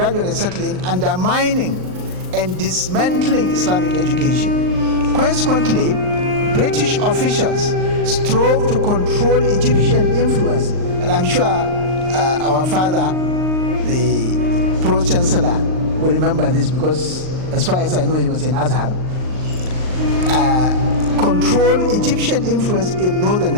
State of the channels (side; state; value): left; late; 39 ms